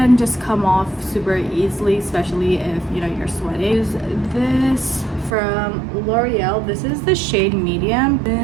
just come off super easily, especially if you know you're sweating. Use this from L'Oreal. This is the shade medium.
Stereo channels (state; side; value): drops out; left; at 5.3 s